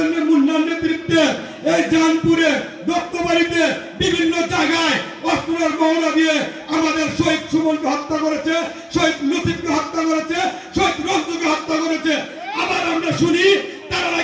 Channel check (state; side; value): identical; both; correlation 1.00